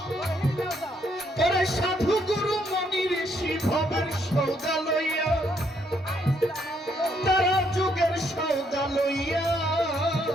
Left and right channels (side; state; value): both; normal; correlation 0.72